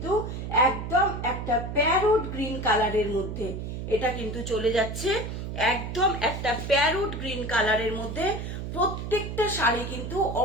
একদম একটা প্যারোট গ্রিন কালারের মধ্যে, এটা কিন্তু চলে যাচ্ছে একদম একটা প্যারোট গ্রিন কালারের মধ্যে। প্রত্যেকটা শাড়ি কিন্তু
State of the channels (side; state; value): right; noise; hum, 6 dB below the sound